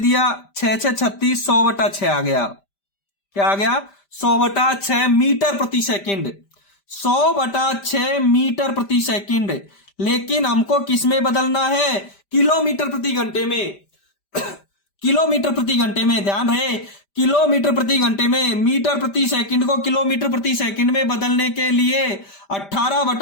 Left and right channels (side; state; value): right; late; 5.1 ms